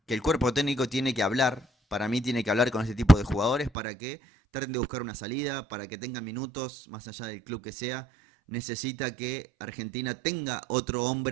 que el cuerpo técnico tiene que hablar. Para mí tiene que hablar con este tipo de jugadores para que traten de buscar una salida, para que tengan minutos, más allá del club que sea. Necesita que Argentina tenga otro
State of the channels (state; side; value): drops out; left; at 3.7 s